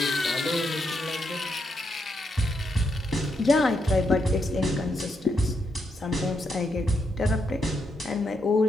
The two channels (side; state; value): both; normal; correlation 0.80